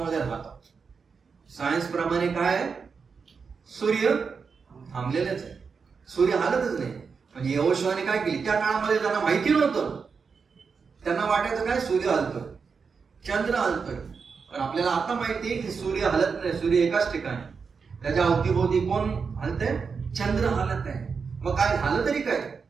राहतो. सायन्स प्रमाणे काय आहे? सूर्य थांबलेलेच आहे, सूर्य हालतच नाही. म्हणजे यहोशुवाने काय केली? त्या काळामध्ये त्यांना माहिती नव्हतं, त्यांना वाटायचं काय सूर्य हलतोय, चंद्र हलतोय. पण आपल्याला आता माहिती आहे की सूर्य हलत नाही, सूर्य एकाच ठिकाणी, त्याच्या अवतीभोवती कोण हलतंय? चंद्र हलत आहे. मग काय झालं तरी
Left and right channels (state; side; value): quieter; left; 5.5 dB